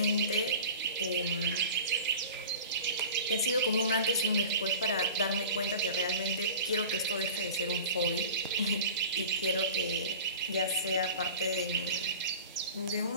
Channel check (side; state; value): both; inverted; correlation -0.38